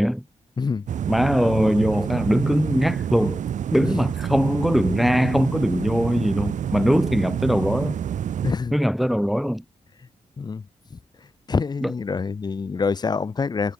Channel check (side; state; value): both; normal; correlation 0.91